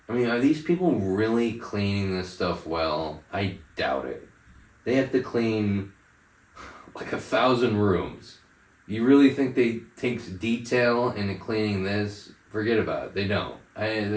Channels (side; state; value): both; identical; correlation 1.00